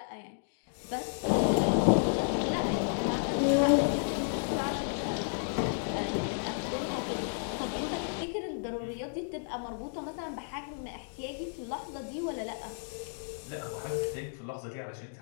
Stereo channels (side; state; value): right; silent; digital silence